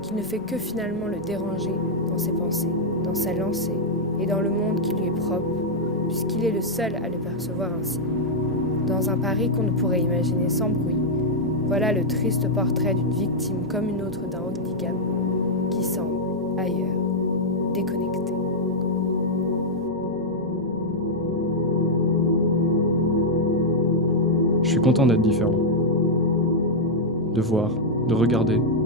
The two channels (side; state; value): right; noise; hum, 26 dB below the sound